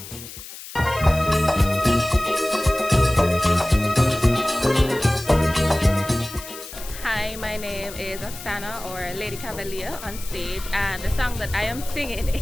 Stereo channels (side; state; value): left; noise; hiss, 13 dB below the sound